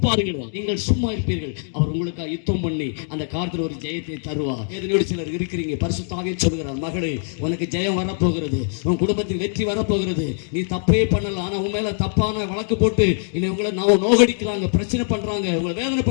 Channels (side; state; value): right; silent; digital silence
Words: பாருங்கள். நீங்கள் சும்மா இருப்பீர்கள், அவர் உங்களுக்கு யுத்தம் பண்ணி அந்த காலத்தில் ஒரு ஜெயத்தை தருவார். வேதனையோடு சிலர் இருக்கிறீங்க. பரிசுத்தாக சொல்கிறார், மகளே உனக்கு ஜெயம் வரப்போகிறது, உன் குடும்பத்தில் வெற்றி வரப்போகிறது. நீ தப்பே பண்ணல, ஆனா உன் மேல தப்பான வழக்கு போட்டு உங்களை நோகடிக்கிறாங்க, பிரச்சனை பண்றாங்க, உங்களை